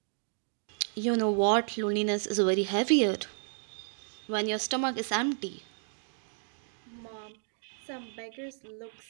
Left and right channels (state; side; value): silent; left; digital silence